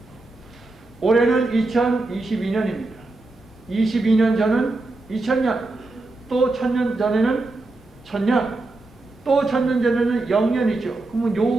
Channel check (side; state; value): left; quieter; 3.1 dB